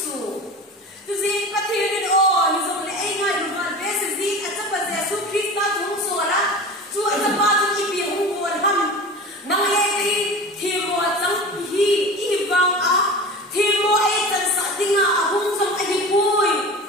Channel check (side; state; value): both; normal; correlation 0.33